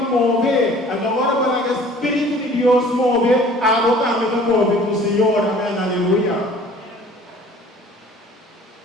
mover. Agora, para que o Espírito de Deus move, a água também vai mover com o Senhor. Amém, aleluia.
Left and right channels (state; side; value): normal; both; correlation 0.50